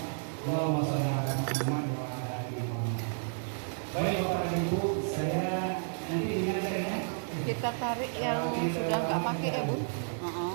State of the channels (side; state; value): left; silent; digital silence